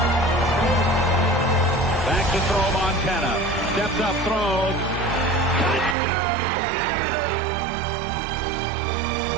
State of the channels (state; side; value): drops out; left; at 6.0 s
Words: Back to throw Montana. Steps up, throws. Touchdown!